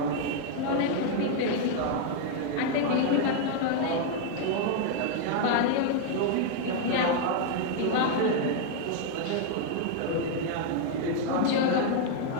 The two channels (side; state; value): both; different; correlation 0.00